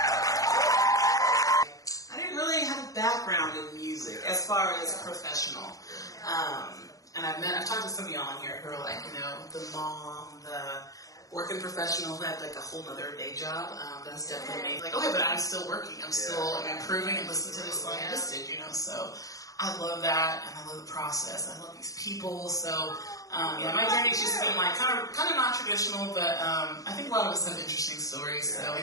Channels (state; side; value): late; right; 0.17 ms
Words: I didn't really have a background in music as far as professional. And I've talked to some of y'all on here who are like, you know, the mom, the working professional who had like a whole nother day job. That's definitely me. Like, okay, but I'm still working. I'm still improving and listening to this song I just did, you know, so I love that, and I love the process. I love these people. So, yeah, my journey's just been like kind of non-traditional, but I think a lot of us have interesting stories, so we